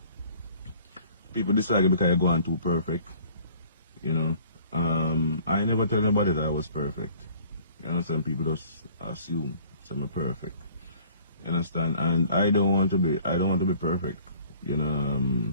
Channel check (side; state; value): both; inverted; correlation -0.53